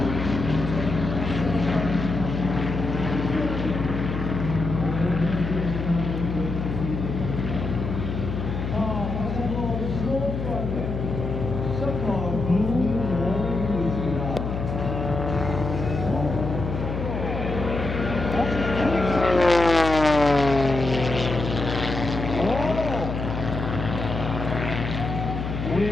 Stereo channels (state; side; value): noise; left; hum, 4 dB below the sound